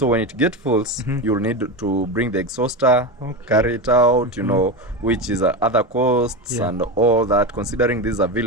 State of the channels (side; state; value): both; normal; correlation 0.19